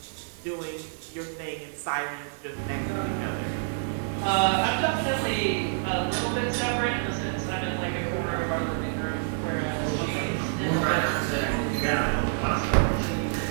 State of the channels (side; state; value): left; silent; digital silence